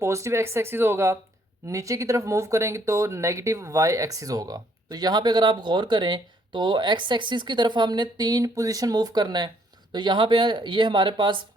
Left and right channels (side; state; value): both; normal; correlation 0.67